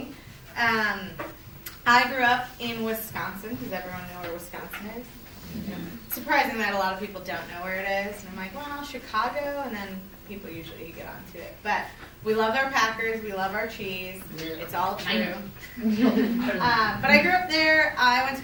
I grew up in Wisconsin. Does everyone know where Wisconsin is? Yeah. Surprising that a lot of people don't know where it is. And I'm like, well, Chicago, and then people usually get onto it. But we love our Packers. We love our cheese. It's all true. But I grew up there. I went to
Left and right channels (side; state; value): both; identical; correlation 1.00